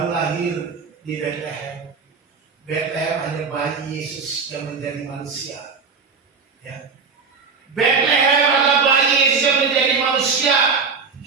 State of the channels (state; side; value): quieter; left; 5.2 dB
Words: lahir di Bethlehem. Bethlehem hanya bayi Yesus yang menjadi manusia. Ya. Bethlehem adalah bayi Yesus yang menjadi manusia.